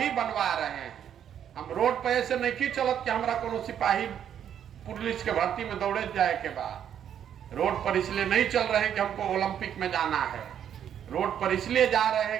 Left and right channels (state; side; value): quieter; left; 9.3 dB